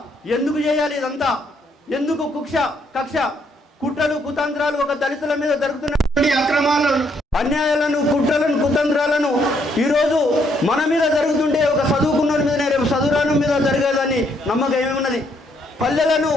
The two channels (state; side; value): normal; both; correlation 0.71